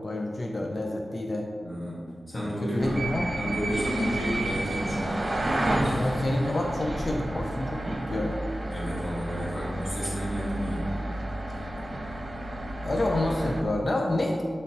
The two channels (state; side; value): normal; both; correlation 0.94